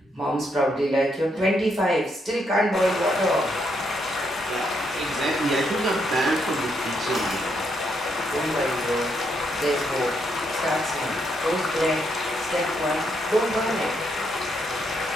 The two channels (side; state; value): both; normal; correlation 0.77